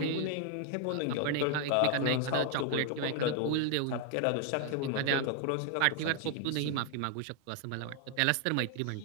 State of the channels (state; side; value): different; both; correlation 0.00